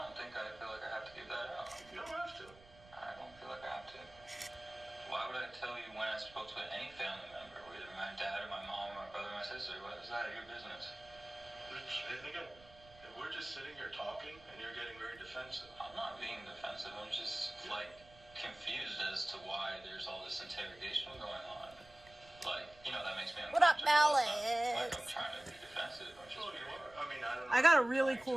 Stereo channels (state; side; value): noise; right; rumble, 23 dB below the sound